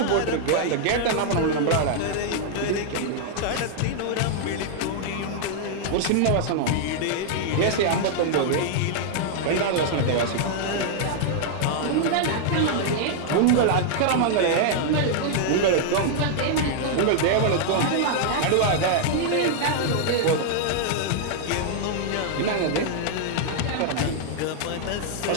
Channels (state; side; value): different; both; correlation -0.01